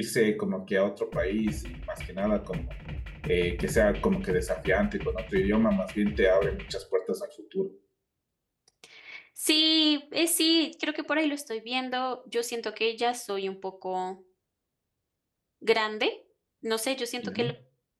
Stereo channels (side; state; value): both; identical; correlation 1.00